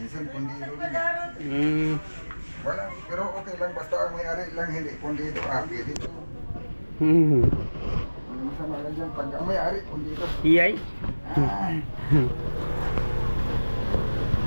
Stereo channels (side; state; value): both; inverted; correlation -1.00